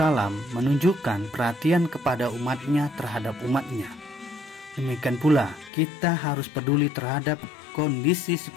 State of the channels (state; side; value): drops out; right; at 5.7 s